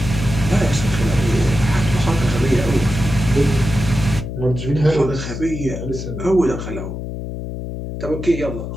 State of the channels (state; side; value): noise; left; hum, 7 dB below the sound